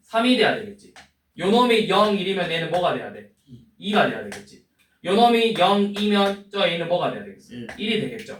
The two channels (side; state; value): both; identical; correlation 1.00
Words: 3이 돼야 되겠지. 요놈이 0, 1이면 얘는 뭐가 돼야 돼? 2가 돼야 되겠지. 요놈이 0, 2면 저 a는 뭐가 돼야 되겠지? 1이